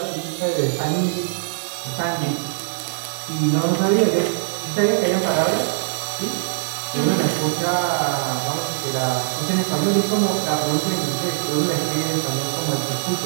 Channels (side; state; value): left; silent; digital silence